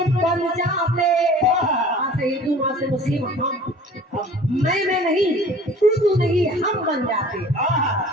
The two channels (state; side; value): normal; both; correlation 0.46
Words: बन जाते, हाँ से हिंदू, माँ से मुस्लिम, हम मैं नहीं, तू नहीं, हम बन जाते।